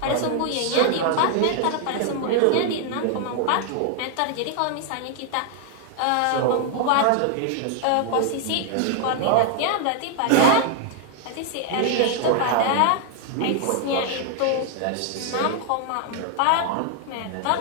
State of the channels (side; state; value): both; different; correlation 0.00